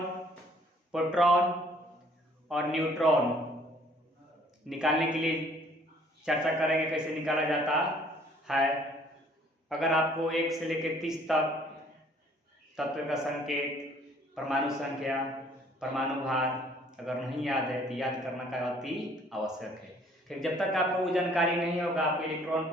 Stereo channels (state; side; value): normal; both; correlation 0.59